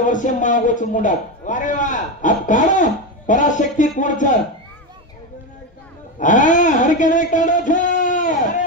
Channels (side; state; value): both; normal; correlation 0.15